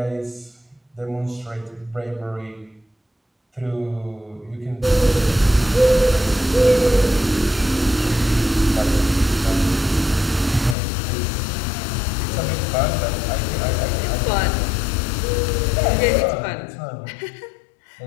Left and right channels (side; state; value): right; drops out; at 10.8 s